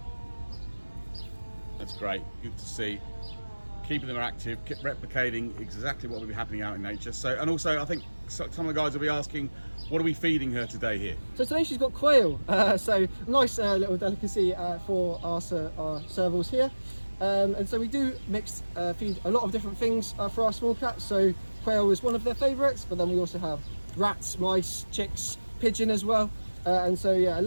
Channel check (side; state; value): both; inverted; correlation -1.00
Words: That's great, good to see. Keeping them active, replicating exactly what will be happening out in nature. So, and also I think some of the guys will be asking, what are we feeding her today here? So today she's got quail, so nice little delicacy for our servals here. And so we do feed a lot of different things for our small cats. So quail is one of their favourites, but then we also have rats, mice, chicks, pigeon as well. And so yeah, a